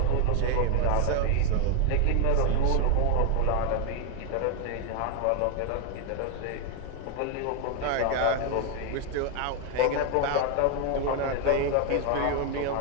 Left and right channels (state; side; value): different; both; correlation 0.00